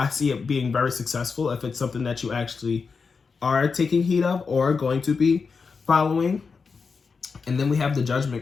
see it being very successful if it's something that you actually are taking heed of or going to be following. And then we have the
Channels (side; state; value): right; quieter; 5.1 dB